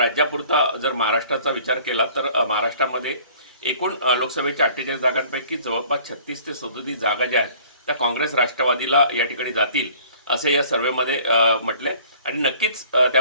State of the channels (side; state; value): both; inverted; correlation -0.52